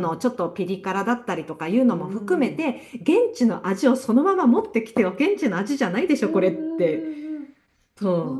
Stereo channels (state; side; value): identical; both; correlation 1.00